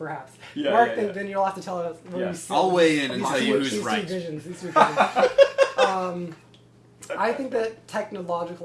Yeah, Mark, yeah. then you'll have to tell us where Yeah. you sit. I'll weigh in and These tell two- you who's these two right. visions. I think that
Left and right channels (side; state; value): both; identical; correlation 1.00